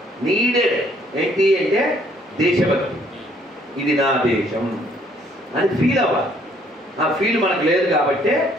నీడెడ్ ఏంటి అంటే దేశభక్తి. ఇది నా దేశం అని ఫీల్ అవ్వాలి. ఆ ఫీల్ మనకు లేదు కాబట్టి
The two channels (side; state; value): both; normal; correlation 0.64